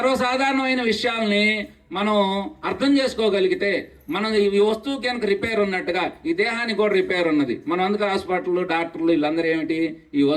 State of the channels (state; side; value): identical; both; correlation 1.00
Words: విషయాల్ని మనం అర్థం చేసుకోగలిగితే మనం ఈ వస్తువు కనుక రిపేర్ ఉన్నట్టుగా ఈ దేహానికి కూడా రిపేర్ ఉన్నది. మనం అందుకు హాస్పిటల్, డాక్టర్లు వీళ్ళందరూ ఏమిటి, ఈ